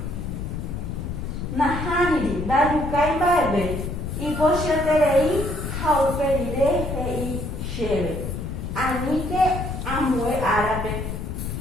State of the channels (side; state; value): left; noise; rumble, 5 dB below the sound